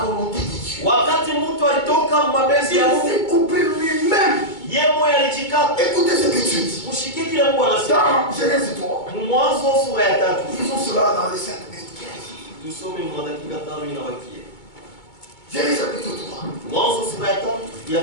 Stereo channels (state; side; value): late; right; 2.2 ms